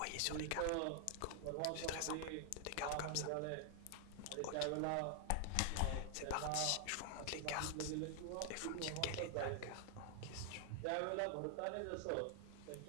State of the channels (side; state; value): both; different; correlation 0.00